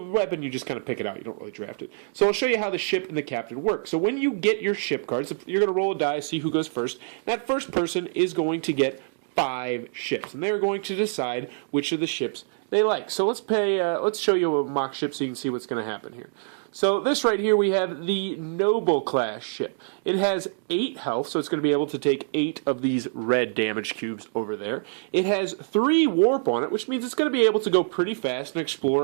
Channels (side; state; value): left; silent; digital silence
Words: you just kind of pick it out. You don't really draft it. So I'll show you how the ship and the captain work. So when you get your ship cards, you're going to roll a die, see who goes first. That first person is going to get 5 ships, and they're going to decide which of the ships they like. So let's show you a mock ship so you can see what's going to happen here. So this right here, we have the Noble class ship. It has 8 health, so it's going to be able to take 8 of these red damage cubes over there. It has 3 warp on it, which means it's going to be able to go pretty fast and